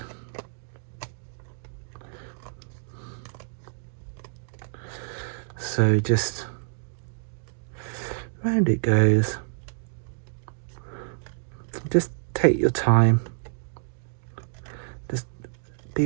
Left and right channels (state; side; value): silent; left; digital silence